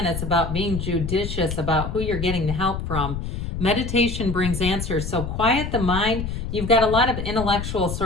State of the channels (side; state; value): left; noise; rumble, 5 dB below the sound